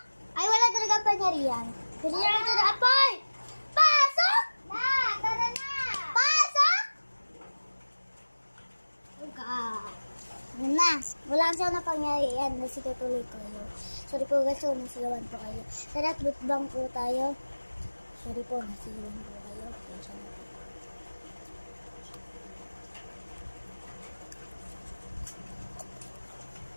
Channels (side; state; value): both; inverted; correlation -1.00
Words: Ay, wala talaga pangyarihan. Kasi na ito na apoy! Pasok! Tara na! Pasok! Na, wala kasi na pangyarihan. Nasitutuloy ko yun. Sorry po guys, nasigawan po kayo. Tara, butbang po tayo. Sorry po, nasigawan po kayo. Pasensya na po.